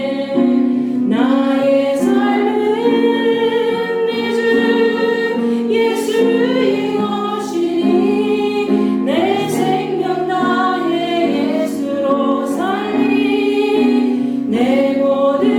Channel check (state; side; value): identical; both; correlation 1.00